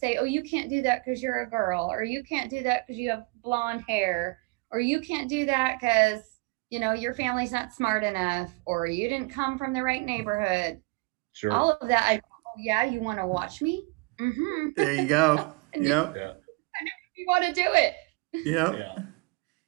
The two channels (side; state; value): left; quieter; 28.2 dB